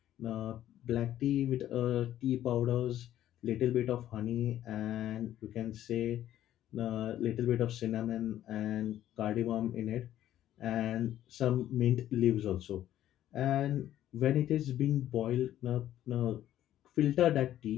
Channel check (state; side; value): quieter; right; 12.4 dB